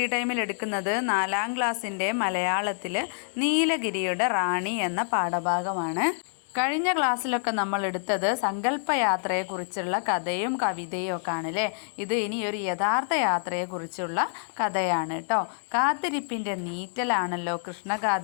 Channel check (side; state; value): right; silent; digital silence